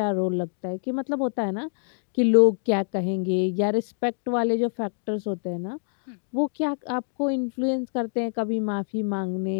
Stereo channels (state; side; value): silent; right; digital silence